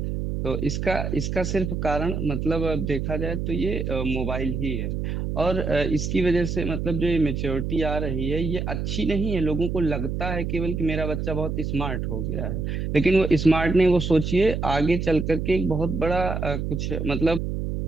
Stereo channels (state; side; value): noise; right; hum, 2 dB below the sound